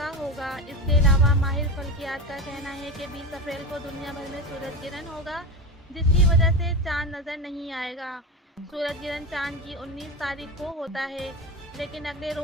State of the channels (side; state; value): both; normal; correlation 0.22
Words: होगा। इसके अलावा माहिर फल्कियात का कहना है कि 20 अप्रैल को दुनिया भर में सूरज गिरहन होगा, जिसकी वजह से चांद नज़र नहीं आएगा। सूरज गिरहन चांद की 19 तारीख को होता है, लेकिन अगले